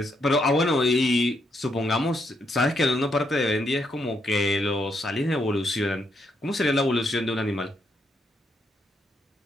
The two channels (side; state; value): both; normal; correlation 0.77